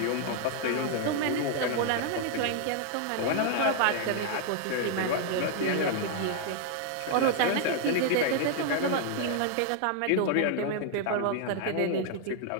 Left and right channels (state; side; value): different; both; correlation 0.00